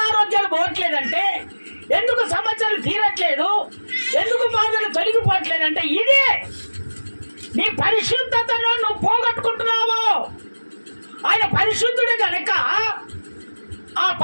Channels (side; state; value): both; inverted; correlation -1.00